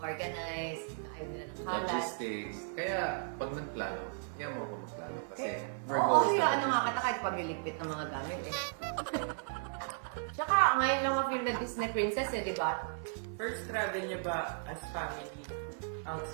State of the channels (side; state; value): left; silent; 54 dB below the other